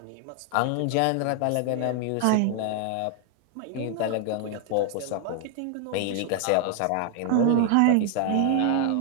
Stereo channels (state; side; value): different; both; correlation 0.00